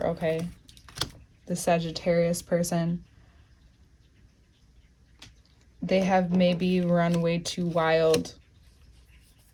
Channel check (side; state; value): both; identical; correlation 1.00